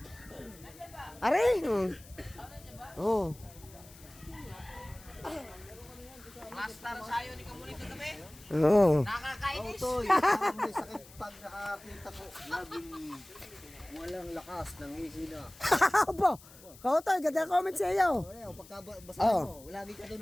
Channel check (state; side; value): noise; left; hiss, 21 dB below the sound